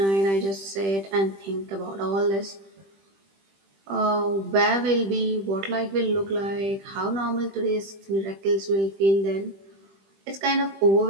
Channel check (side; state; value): left; late; 20 ms